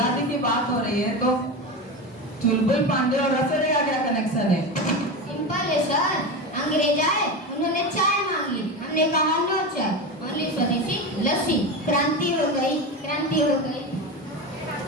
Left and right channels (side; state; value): both; normal; correlation 0.21